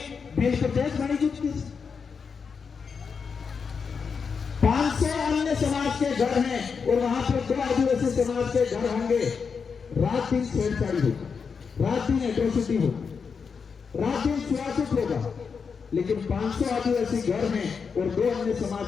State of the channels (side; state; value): right; quieter; 5.8 dB